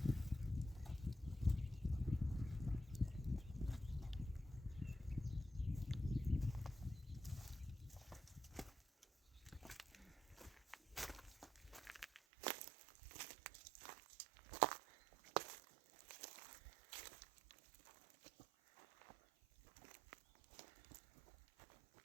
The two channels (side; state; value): left; drops out; at 12.2 s